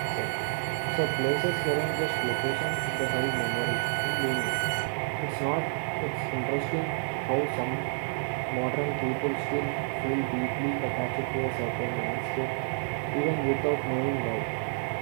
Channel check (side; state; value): left; silent; 58 dB below the other